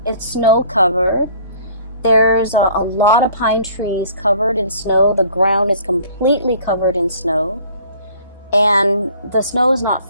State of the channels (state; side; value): inverted; both; correlation -0.53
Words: snow covered. There's a lot of pine trees covered in snow. The ground is completely covered in snow, and the snow is not